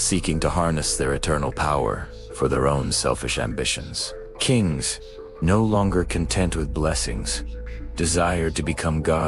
to harness their eternal power for their own selfish ambitions. Kings, no longer content with blessings, desired to become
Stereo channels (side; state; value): both; identical; correlation 1.00